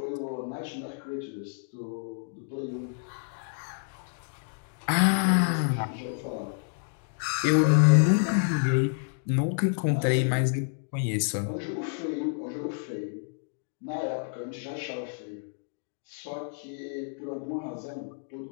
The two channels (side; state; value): right; silent; digital silence